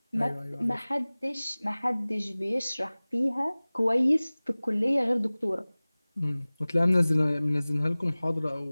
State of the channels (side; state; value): both; inverted; correlation -0.99